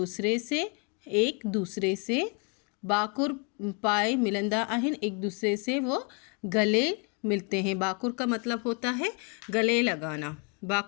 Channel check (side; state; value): right; quieter; 33.6 dB